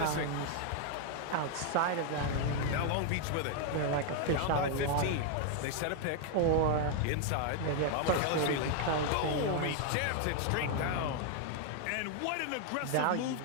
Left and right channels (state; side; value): different; both; correlation 0.00